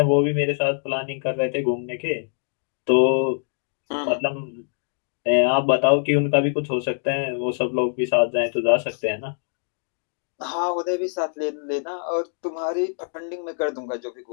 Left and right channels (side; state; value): right; silent; digital silence